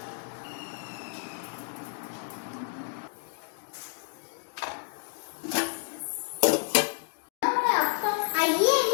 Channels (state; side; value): silent; right; digital silence